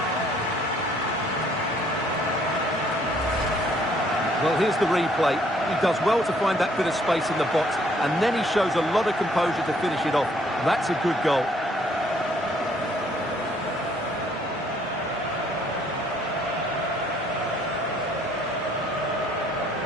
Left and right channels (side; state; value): both; normal; correlation 0.64